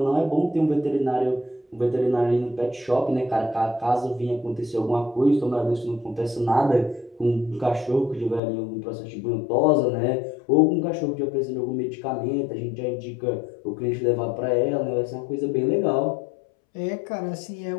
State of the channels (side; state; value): right; drops out; at 8.4 s